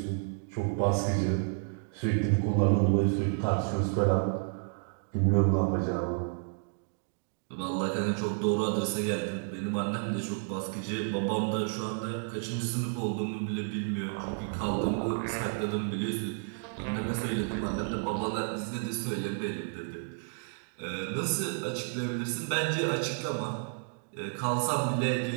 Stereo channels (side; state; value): left; silent; 57 dB below the other